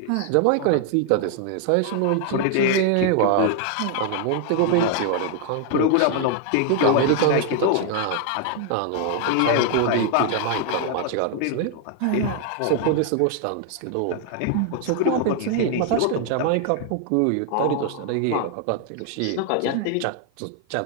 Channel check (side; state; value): both; different; correlation 0.00